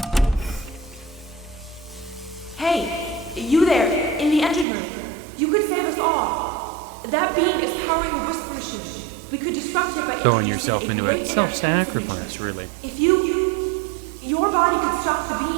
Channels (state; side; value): drops out; left; at 4.7 s